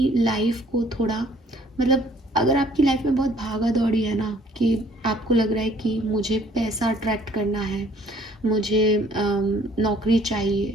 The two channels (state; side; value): normal; both; correlation 0.59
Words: लाइफ को थोड़ा, मतलब अगर आपकी लाइफ में बहुत भागा दौड़ी है ना, कि आपको लग रहा है कि मुझे पैसा अट्रैक्ट करना है, मुझे नौकरी